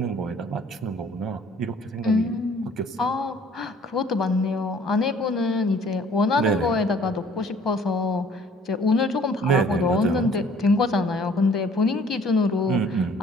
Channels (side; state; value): both; normal; correlation 0.56